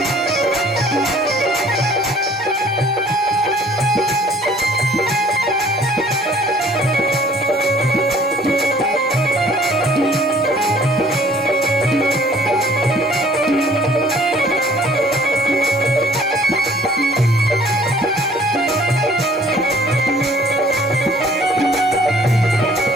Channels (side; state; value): both; normal; correlation 0.55